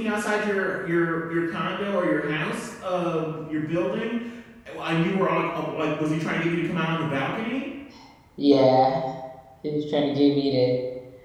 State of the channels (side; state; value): both; identical; correlation 1.00